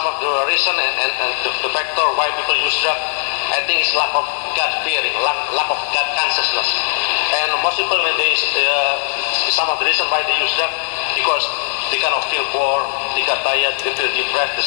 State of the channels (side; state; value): right; silent; 67 dB below the other